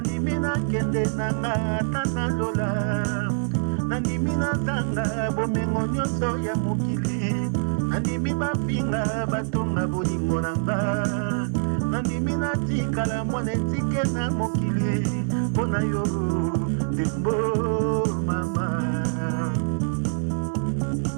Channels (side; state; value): left; silent; digital silence